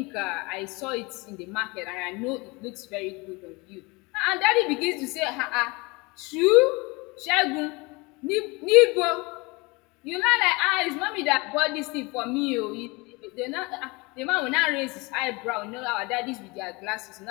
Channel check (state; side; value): quieter; right; 25.8 dB